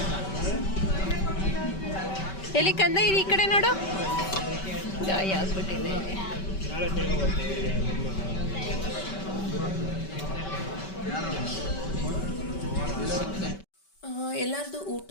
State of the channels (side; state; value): right; late; 5.2 ms